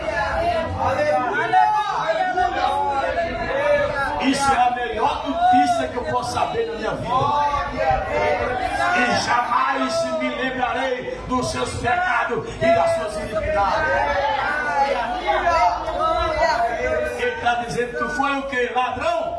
Isso é a melhor notícia que eu posso saber na minha vida. E jamais me lembrarei dos seus pecados e das suas iniquidades. Ele está dizendo que tu foi o que?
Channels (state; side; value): identical; both; correlation 1.00